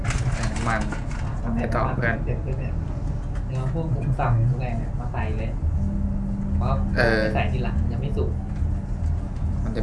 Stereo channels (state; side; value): identical; both; correlation 1.00